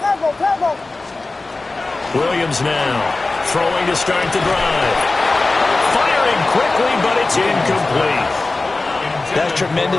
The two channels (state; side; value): quieter; right; 3.4 dB